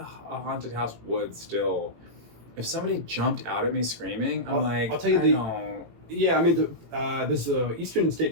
haunted house would still. If somebody jumped out at me screaming, I'm I'll tell you know. Yeah, I mean, there's the Eastern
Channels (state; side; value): late; left; 18 ms